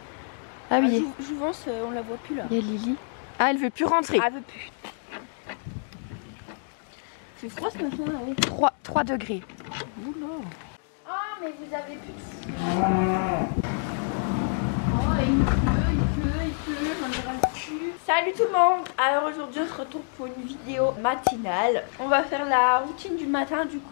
Ah oui. Jouvence, on la voit plus là. Il y a Lily. Ah, elle veut plus rentrer. Ah, elle veut plus. C'est froid ce matin là, oui. 3 degrés. Oula. Ah, mais vous avez plus de... il pleut, j'en ai ras le cul. Salut tout le monde. Alors aujourd'hui on se retrouve pour une vidéo matinale. On va faire la routine du matin. Du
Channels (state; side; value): silent; right; 60 dB below the other